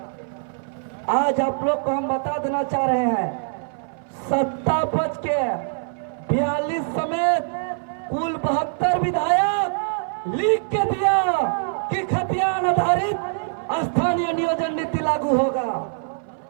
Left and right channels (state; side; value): silent; left; 59 dB below the other